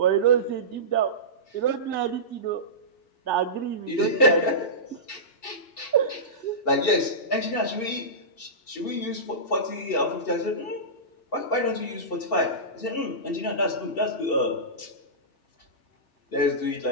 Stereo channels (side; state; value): right; late; 2.7 ms